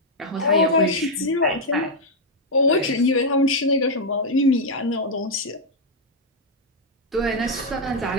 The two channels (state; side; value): normal; both; correlation 0.00